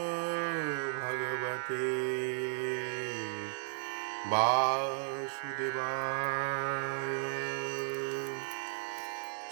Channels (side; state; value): left; silent; digital silence